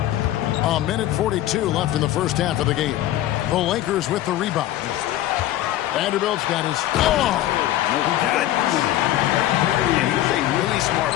A minute 42 left in the first half of the game. The Lakers with the rebound. Vanderbilt's got his... And he's a really smart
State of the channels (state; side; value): quieter; right; 13.8 dB